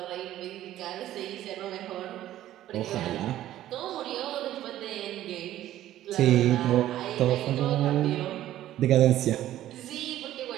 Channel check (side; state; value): left; quieter; 13.4 dB